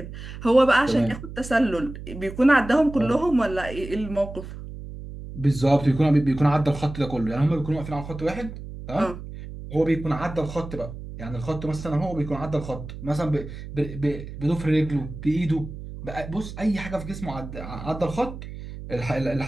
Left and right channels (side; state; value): right; noise; hum, 11 dB below the sound